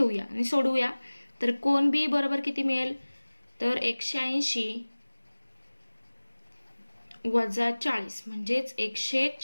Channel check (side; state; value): both; inverted; correlation -1.00